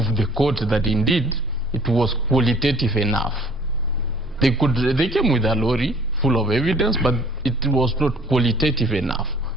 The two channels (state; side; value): normal; both; correlation 0.53